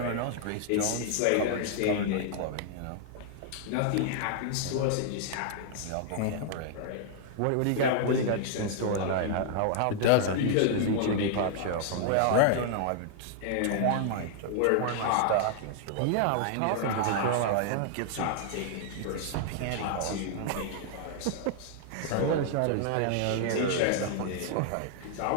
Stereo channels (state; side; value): different; both; correlation -0.01